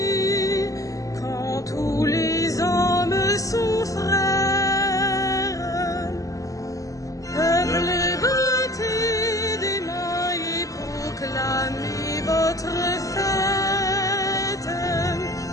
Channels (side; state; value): right; late; 0.16 ms